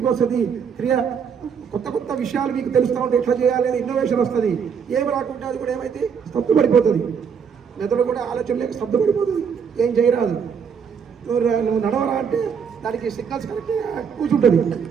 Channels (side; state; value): left; quieter; 6.8 dB